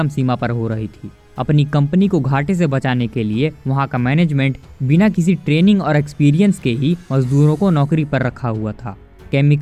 सीमा पर हो रही थी। अपनी कंपनी को घाटे से बचाने के लिए वहां का मैनेजमेंट बिना किसी ट्रेनिंग और एक्सपीरियंस के ही मजदूरों को नौकरी पर रखा हुआ था।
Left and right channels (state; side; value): identical; both; correlation 1.00